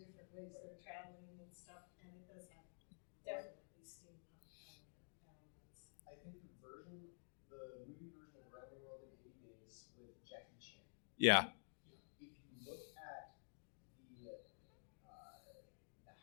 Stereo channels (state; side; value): silent; right; digital silence